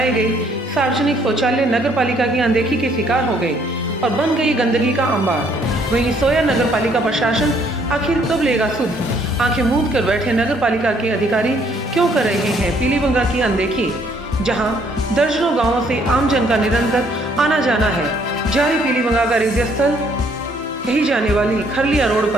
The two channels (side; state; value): both; normal; correlation 0.65